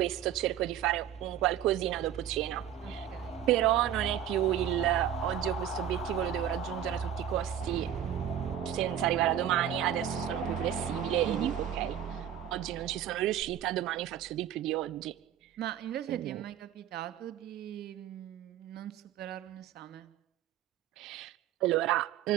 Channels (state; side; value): quieter; left; 10.3 dB